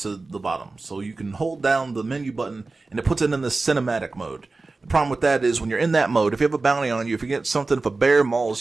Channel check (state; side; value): quieter; left; 3.6 dB